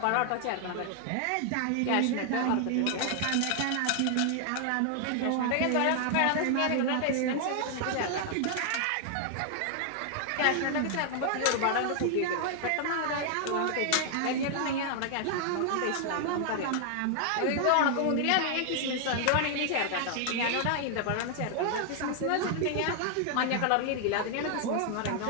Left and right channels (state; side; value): different; both; correlation 0.00